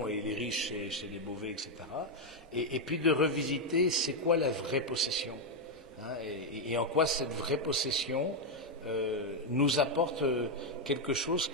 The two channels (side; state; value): both; normal; correlation 0.02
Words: et les riches, c'est des mauvais, etc. Et puis de revisiter, c'est quoi la vraie possession, et en quoi cette vraie possession nous apporte quelque chose